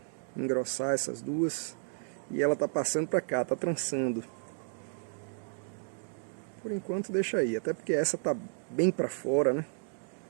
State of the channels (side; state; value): left; silent; 56 dB below the other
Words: engrossar essas duas. E ela tá passando pra cá, tá trançando. Por enquanto deixa aí, até porque essa tá bem pra fora, né?